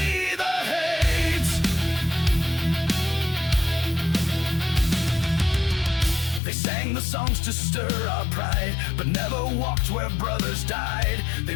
the hate. They sang the songs to stir our pride, but never walked where brothers died. They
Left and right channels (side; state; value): right; drops out; at 6.4 s